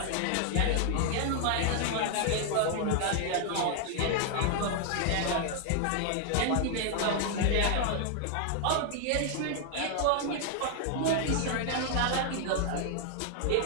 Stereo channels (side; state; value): both; different; correlation 0.00